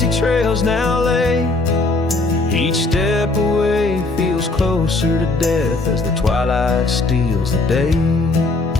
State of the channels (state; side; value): quieter; right; 3.2 dB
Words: trails now lay. Each step away feels closer to death as the twilight steals the day.